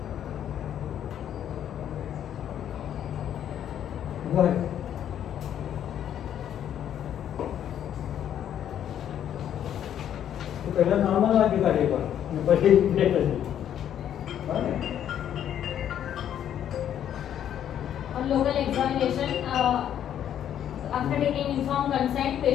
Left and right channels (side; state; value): right; quieter; 10.1 dB